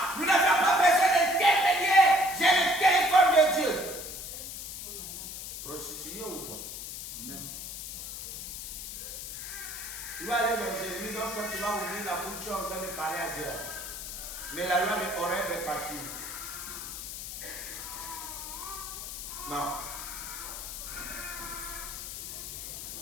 nous n'avons pas besoin d'intermédiaire, j'ai le téléphone de Dieu. Prostitué ou quoi? Même. Tu vas aller dans Jérémie, donc quand tu vas ouvrir la bouche, tu es en train de parler à Dieu. Mais la loi de Horeb est partie. Non.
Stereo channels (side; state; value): left; noise; hiss, 8 dB below the sound